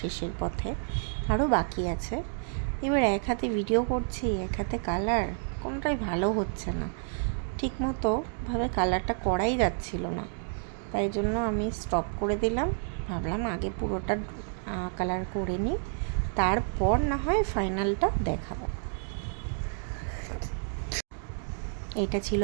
শেষের পথে, আরও বাকি আছে। এবার এক হাতে ভিডিও করছি, এক হাতে কালার, কোনটাই ভালো হচ্ছে না, ঠিকমতো ভাবে কালারটা করাই যাচ্ছিল না। তাই জন্য আমি স্টপ করে দিলাম, ভাবলাম আগে পুরোটা কালার করে নিই, তারপর না হয় ফাইনালটা দেখাবো। এটা ছিল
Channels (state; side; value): silent; left; 57 dB below the other